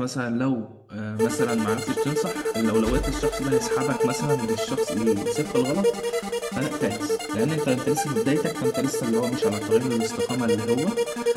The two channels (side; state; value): both; identical; correlation 1.00